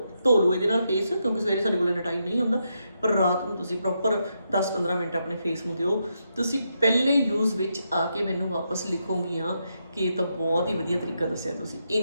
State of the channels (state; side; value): inverted; both; correlation -0.82